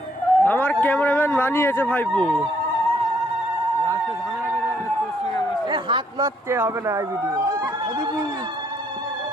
আমার ক্যামেরাম্যান বানিয়েছে ভাইপু। হাত মারতে হবে না এই ভিডিও।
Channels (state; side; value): normal; both; correlation 0.69